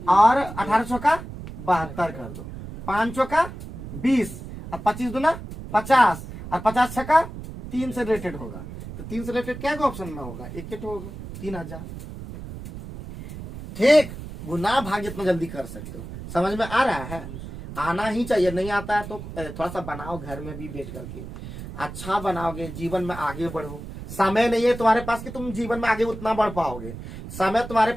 और 18 चौका 72 कर दो, 5 चौका 20, और 25 गुना 50, और 50 छक्का 3 से रिलेटेड होगा, तो 3 से रिलेटेड क्या ऑप्शन में होगा, एक होगा 3000, ठीक। गुना भाग जितना जल्दी कर सकते हो, समझ में आ रहा है, आना ही चाहिए, नहीं आता है तो थोड़ा सा बनाओ घर में भी बैठ करके, अच्छा बनाओगे जीवन में आगे बढ़ो। समय नहीं है तुम्हारे पास कि तुम जीवन में आगे उतना बढ़ पाओगे, समय तुम्हारे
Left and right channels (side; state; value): right; noise; rumble, 11 dB below the sound